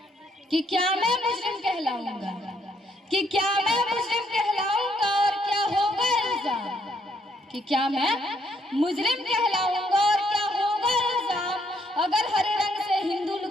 कि क्या मैं मुस्लिम कहलाऊंगा? कि क्या मैं मुस्लिम कहलाऊंगा और क्या होगा इल्जाम? कि क्या मैं मुस्लिम कहलाऊंगा और क्या होगा इल्जाम अगर हरे रंग से हिंदू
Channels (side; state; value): both; normal; correlation 0.71